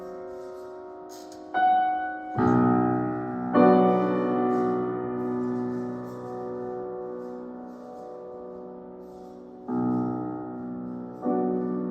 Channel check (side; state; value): both; identical; correlation 1.00